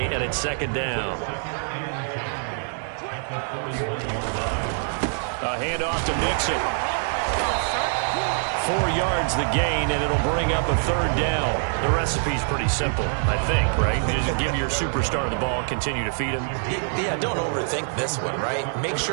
and it's 2nd down. A handoff to Mixon. 4 yards the gain, and it'll bring up a 3rd down. The recipe's pretty simple, I think, right? You just give your superstar the ball, continue to feed him. Yeah, don't overthink this one, right? Make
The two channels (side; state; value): left; silent; 62 dB below the other